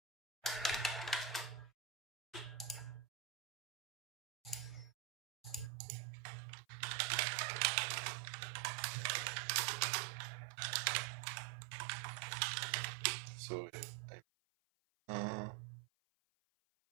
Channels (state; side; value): drops out; left; at 5.7 s